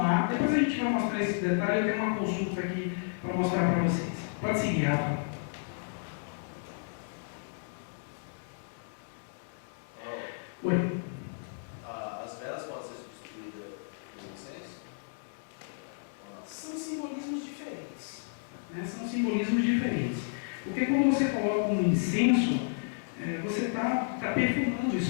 Depois a gente vai mostrar esse detalhe. Eu tenho uma consulta aqui para mostrar para vocês. Pode seguir, Rafa. Oi. As velas podem ser substituídas por incenso? São simbolismos diferentes, né? São simbolismos diferentes. Porque quando você coloca um incenso, você está perfumando o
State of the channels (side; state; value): right; silent; digital silence